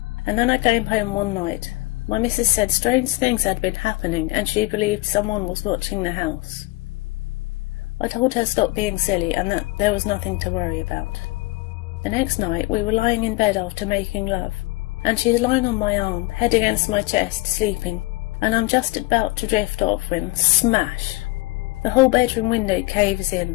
and then I came home one night. My missus said strange things had been happening, and she believed someone was watching the house. I told her stop being silly and that there was nothing to worry about. The next night we were lying in bed after making love, and she's lying on my arm, head against my chest, sleeping, and I'm just about to drift off when smash! The whole bedroom window caves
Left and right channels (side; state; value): right; quieter; 22.5 dB